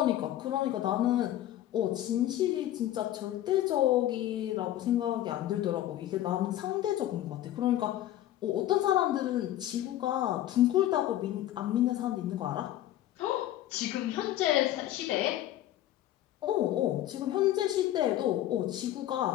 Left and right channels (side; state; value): right; quieter; 13.3 dB